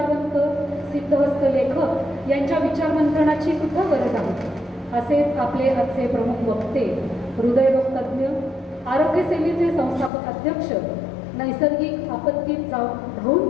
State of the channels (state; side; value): drops out; right; at 10.1 s